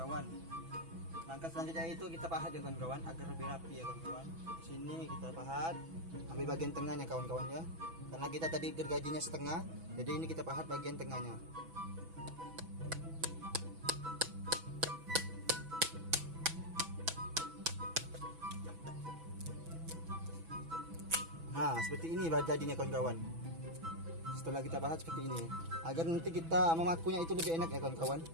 Langkah selanjutnya itu kita pahat ya kawan-kawan agar lebih rapi ya kawan-kawan. Di sini kita pahat, ambil bagian tengahnya kawan-kawan ya. Karena kita tadi gergajinya setengah, jadi ini kita pahat bagian tengahnya. Nah, seperti ini jadinya kawan-kawan. Setelah kita pahat seperti ini, agar nanti kita memakunya itu lebih enak ya kawan-kawan,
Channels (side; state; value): left; late; 6.1 ms